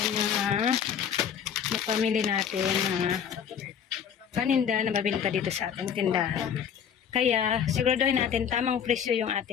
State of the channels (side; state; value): right; quieter; 8.0 dB